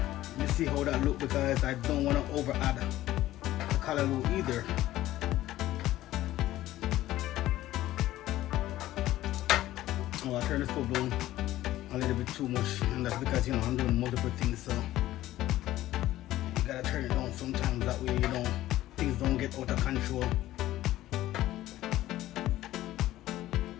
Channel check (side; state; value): right; quieter; 14.9 dB